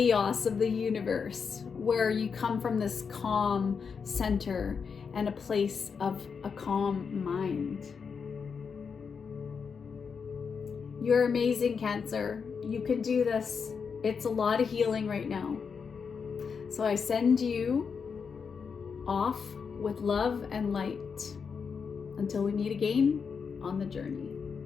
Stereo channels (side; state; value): right; quieter; 6.0 dB